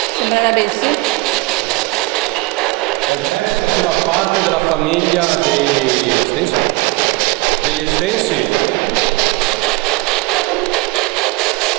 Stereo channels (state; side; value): quieter; left; 23.5 dB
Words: Sembra adesso? Il prete faceva parte della famiglia dei Estensi? Degli Estensi?